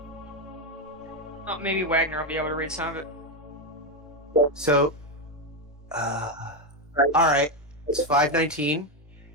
Oh, maybe Wagner will be able to read some of it. So, all right, it's 5:19.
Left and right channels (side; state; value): both; normal; correlation 0.08